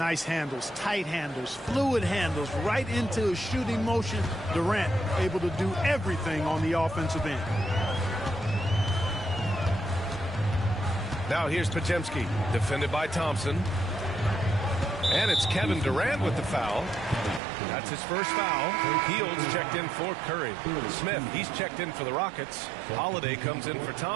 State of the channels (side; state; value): left; drops out; at 17.4 s